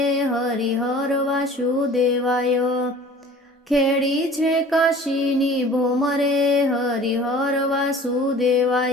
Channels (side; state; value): both; normal; correlation 0.46